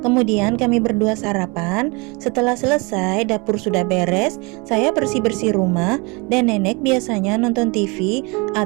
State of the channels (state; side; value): quieter; left; 28.4 dB